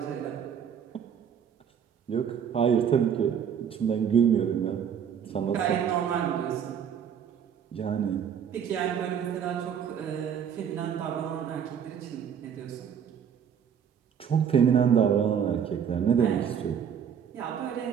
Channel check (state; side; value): quieter; left; 8.0 dB